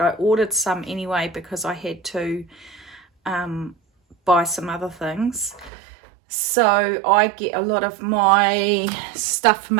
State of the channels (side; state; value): left; drops out; at 5.7 s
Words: ordered some anyway because I had to buy some other things. So I get a lot of my stuff for